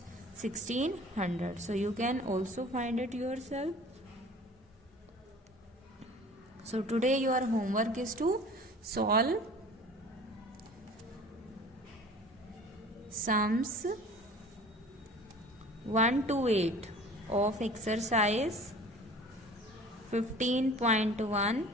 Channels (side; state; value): both; normal; correlation 0.45